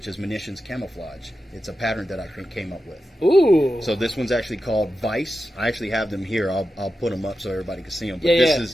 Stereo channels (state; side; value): normal; both; correlation 0.91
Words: is munitions camouflage. It's a pattern that I came up with. Ooh. So this one's actually called Vice. I actually have them here. I'll put them up so everybody can see them. But Yeah, this yeah.